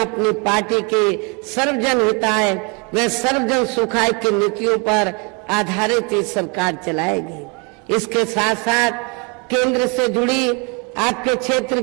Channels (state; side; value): quieter; left; 32.0 dB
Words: पार्टी के सर्वजन हिताय व सर्वजन सुखाय की नीतियों पर आधारित ये सरकार चलाएगी। इसके साथ साथ केंद्र से जुड़ी आपके क्षेत्र